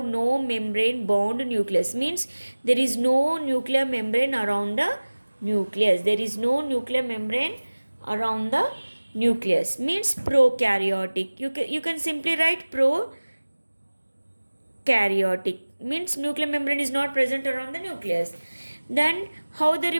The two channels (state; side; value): inverted; both; correlation -1.00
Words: no membrane bound nucleus, means there is no nuclear membrane around the nucleus. There is no nuclear membrane around the nucleus, means prokaryotic. You can simply write prokaryotic, means nuclear membrane is not present around the nucleus. Then how the